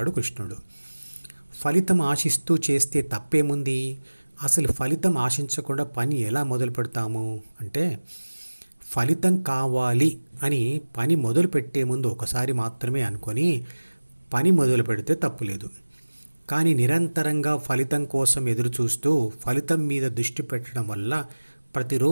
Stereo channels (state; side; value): inverted; both; correlation -1.00